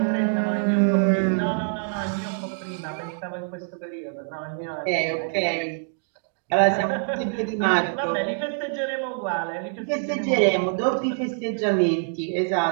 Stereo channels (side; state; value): left; silent; digital silence